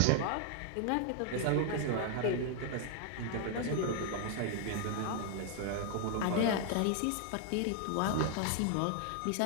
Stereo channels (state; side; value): different; both; correlation 0.00